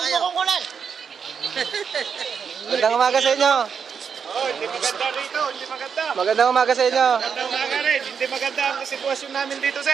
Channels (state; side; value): quieter; left; 6.6 dB